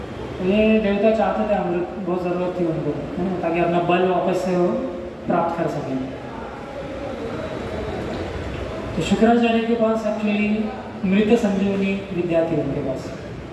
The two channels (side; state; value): both; identical; correlation 1.00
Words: तो ये देवता चाहते थे अमृत, बहुत ज़रूरत थी उनको, है ना, ताकि अपना बल वापस से वो प्राप्त कर सकें। तो शुक्राचार्य के पास एक्चुअली मृत संजीवनी विद्या थी उनके पास।